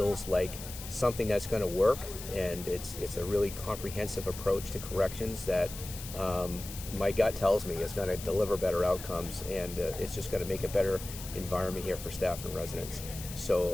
like something that's going to work, and it's a really comprehensive approach to corrections that my gut tells me is going to deliver better outcomes, and it's just going to make a better environment here for staff and residents.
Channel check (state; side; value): noise; left; hiss, 11 dB below the sound